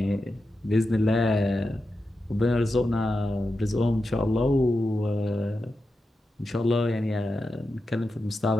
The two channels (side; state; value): both; normal; correlation 0.90